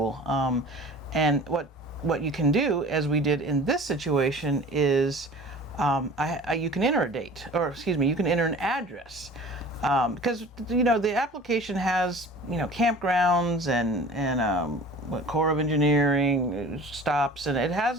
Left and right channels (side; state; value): both; normal; correlation 0.42